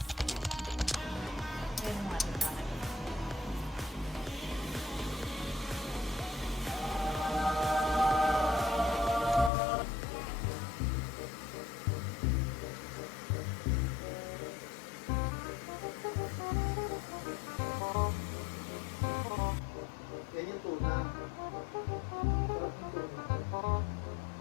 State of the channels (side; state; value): right; drops out; at 9.5 s